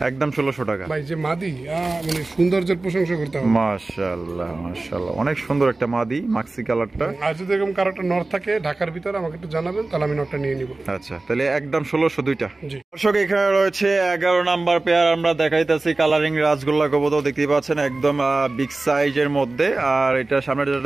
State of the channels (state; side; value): quieter; left; 3.2 dB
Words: একদম 1600 টাকা। ভাই যে মাদি, মানে সৌন্দর্যের প্রশংসা করতে হবে। মাশাআল্লাহ মাশাআল্লাহ, অনেক সুন্দর একটা মাদি, মাক্সি কালারটা। আর যদি এরকম কারো একটা নর থাকে ঢাকার ভিতরে আমাকে একটু জানাবেন, তাহলে আমি নটটা নিয়ে নিব। আচ্ছা, তাহলে একদম 1600 দুইটা। জি দর্শক, এখানে রয়েছে 11 নাম্বার পেয়ার আমরা দেখাইতেছি, কালারিং রাজগোল্লা কবুতর দেখতেই পাচ্ছেন, একদম বিগ সাইজের মধ্যে। আর এটা সামনে যেটা